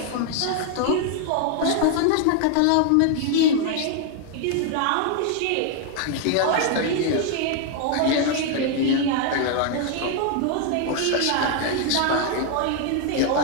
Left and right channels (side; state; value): both; different; correlation 0.00